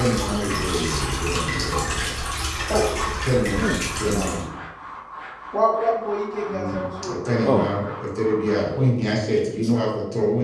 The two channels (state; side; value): identical; both; correlation 1.00